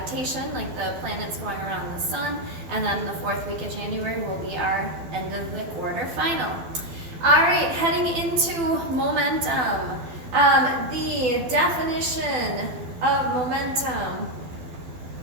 like the planets going around the sun. And then the fourth week of January will be our end of the quarter final. All right, heading into momentum. The definition of momentum,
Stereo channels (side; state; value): left; late; 12 ms